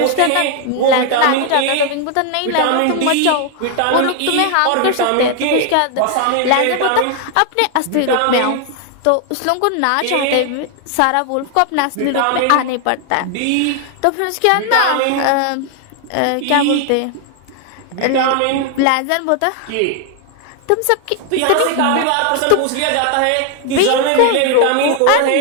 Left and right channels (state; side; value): different; both; correlation 0.00